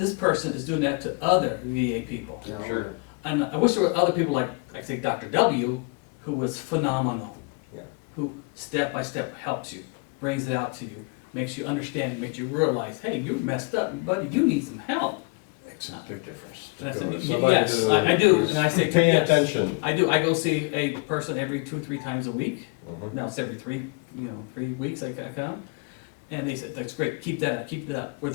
person is doing that to other VA people. Yeah, Sure. And I wish there were other people like say Dr. W, who was phenomenal. Yeah. Who step by step helps you, brings it out to you, makes you understand, makes you realize, hey, you're messed up, buddy, you need some help. Makes a big difference. And I To said, go to "Y- somebody yes, who I do," is and I say, paying "Yes." attention. I do, I go see a person every 2-3 times a week. Mhm. Now it's every 3 weeks I come. And they said, "That's great, keep that up, keep it up." Where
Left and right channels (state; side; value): quieter; right; 31.2 dB